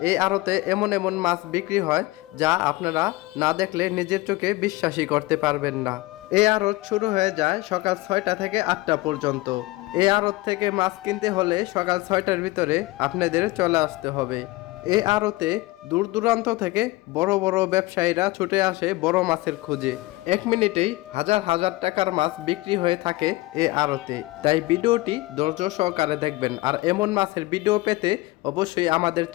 এই আড়তে এমন এমন মাছ বিক্রি হয় যা আপনারা না দেখলে নিজের চোখে বিশ্বাসই করতে পারবেন না। এই আড়ত শুরু হয়ে যায় সকাল 6টা থেকে 8টা পর্যন্ত। এই আড়ত থেকে মাছ কিনতে হলে সকাল 6টার ভিতরে আপনাদের চলে আসতে হবে। এই আড়তে দূর দূরান্ত থেকে বড় বড় ব্যবসায়ীরা ছুটে আসে বড় মাছের খোঁজে। 1 মিনিটেই হাজার হাজার টাকার মাছ বিক্রি হয়ে থাকে এই আড়তে। তাই ভিডিওটি ধৈর্য সহকারে দেখবেন। আর এমন মাছের ভিডিও পেতে অবশ্যই আমাদের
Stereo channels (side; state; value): right; quieter; 20.3 dB